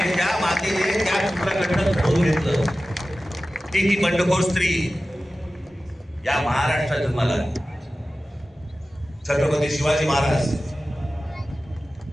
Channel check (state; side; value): normal; both; correlation 0.95